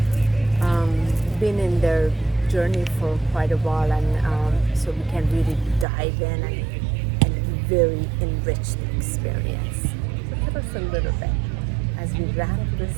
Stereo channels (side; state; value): left; drops out; at 5.9 s